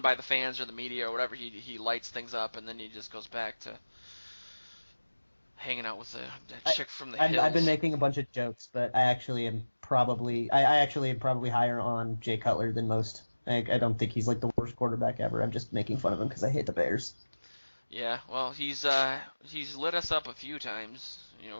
by the fans or the media or whatever, he lights things up and then he just goes back to hanging out with the chick from the hills. I've been making a bunch of jokes, but I actually am probably higher on Jay Cutler than most. I don't think he's like the worst quarterback ever. I'm just making fun of him because I hate the Bears. Yeah, well, he's lit us up a few times.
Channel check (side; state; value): both; inverted; correlation -1.00